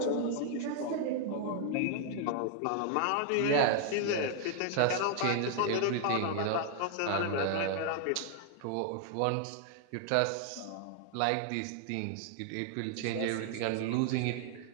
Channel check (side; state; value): both; different; correlation 0.00